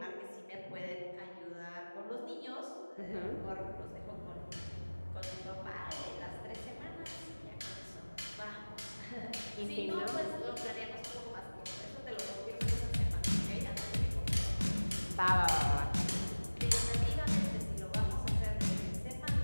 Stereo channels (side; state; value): both; inverted; correlation -1.00